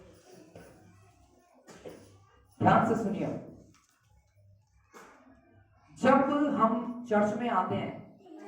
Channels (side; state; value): both; identical; correlation 1.00